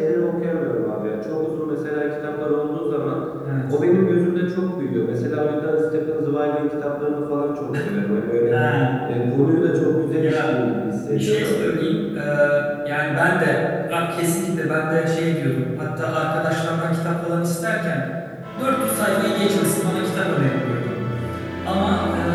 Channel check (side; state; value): both; identical; correlation 1.00